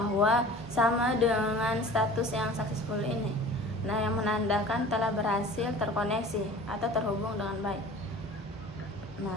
sama dengan status yang successful ini. Nah, yang menandakan telah berhasil terkoneksi atau terhubung dengan baik.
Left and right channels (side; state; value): both; normal; correlation 0.42